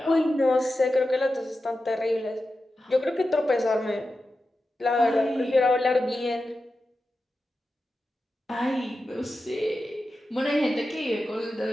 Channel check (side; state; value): both; normal; correlation 0.92